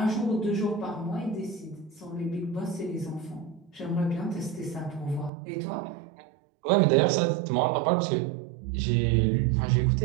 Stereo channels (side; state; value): left; drops out; at 5.3 s